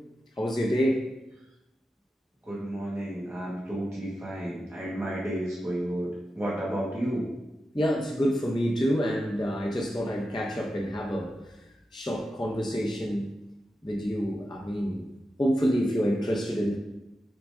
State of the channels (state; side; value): normal; both; correlation 0.90